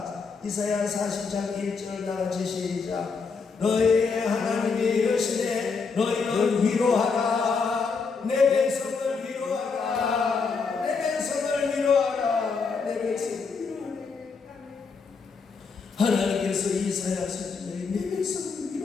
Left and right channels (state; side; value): quieter; right; 5.0 dB